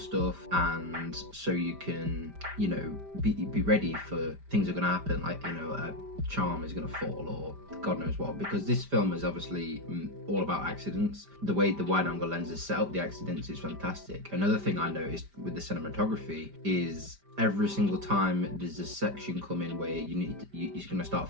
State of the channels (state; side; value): late; left; 5.0 ms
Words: and so you can, you know, be ready for things are going to happen, like, you know, a charm is going to fall or God knows what, because this film is obviously all about accidents. The way the wide angle lenses set up the accidents is fantastic. Another thing I noticed with the cinematography is every single time there's a section coming where you're going to start